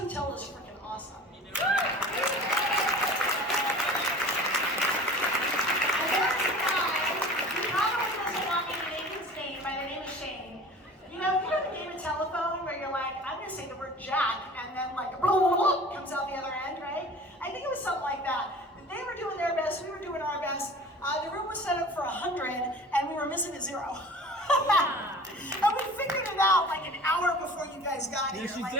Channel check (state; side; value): normal; both; correlation 0.42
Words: is freaking awesome. And there's a guy who probably doesn't want me to name his name by the name of Shane. You know the game of telephone where you're like, I'm gonna say the word Jack, and then like, comes out the other end, right? I think it was something like that. They were doing their best, we were doing our best. The room was set up for 100, and we were missing a 0. And we figured it out like an hour before you guys got here. Yes, you like,